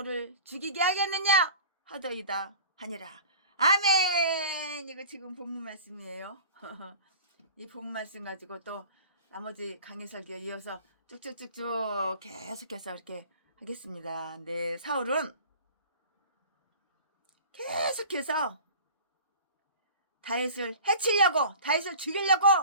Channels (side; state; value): both; inverted; correlation -0.41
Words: 죽이게 하겠느냐 하더이다 하니라. 아멘. 이거 지금 본문 말씀이에요. 이 본문 말씀 가지고 또 나머지 강의 설교에 이어서 쭉쭉쭉쭉 계속해서 이렇게 하겠습니다. 네, 사울은 계속해서 다윗을 해치려고, 다윗을 죽이려고